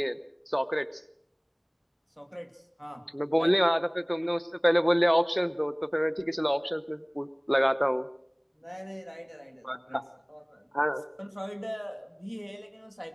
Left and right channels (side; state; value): both; identical; correlation 1.00